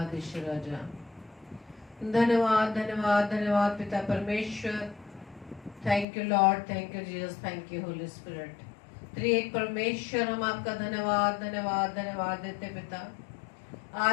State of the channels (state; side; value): drops out; right; at 6.1 s